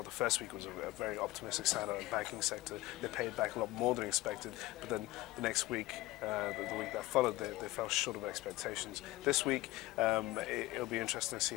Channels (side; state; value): right; quieter; 18.5 dB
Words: the first week was a very optimistic sign out of the banking sector. They paid back a lot more than expected, but then the next week, the week that followed, they fell short of expectations. This week, it'll be interesting to see